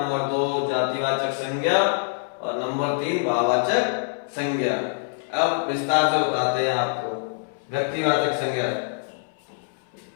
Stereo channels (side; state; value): right; silent; 62 dB below the other